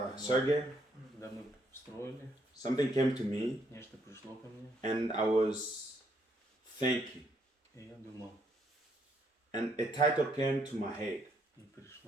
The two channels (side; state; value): both; normal; correlation 0.72